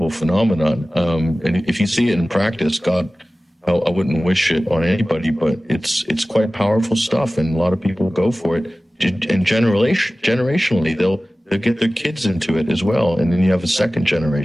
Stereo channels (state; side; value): normal; both; correlation 0.97